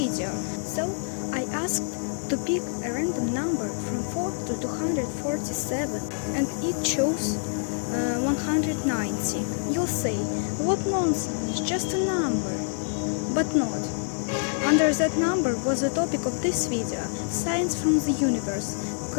so I asked to pick a random number from 4 to 247, and it chose 190. You'll say, what nonsense, just a number. But not. Under that number was the topic of this video, signs from the universe,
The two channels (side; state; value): right; silent; 61 dB below the other